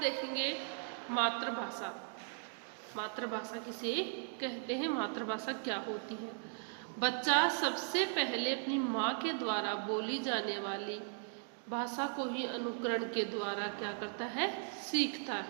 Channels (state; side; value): silent; left; 53 dB below the other